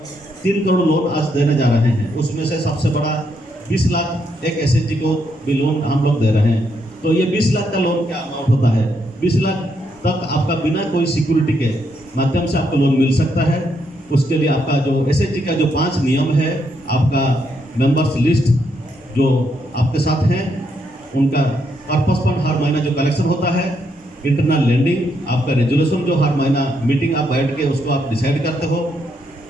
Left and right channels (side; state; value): both; normal; correlation 0.77